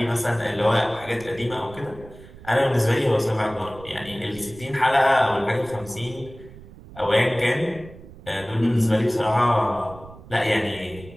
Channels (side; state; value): right; noise; rumble, 19 dB below the sound